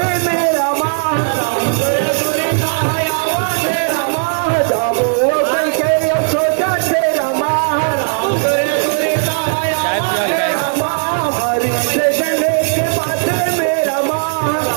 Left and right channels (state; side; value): silent; left; digital silence